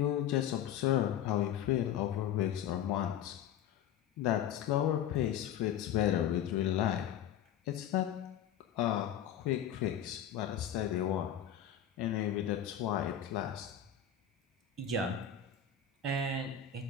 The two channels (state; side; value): quieter; right; 9.3 dB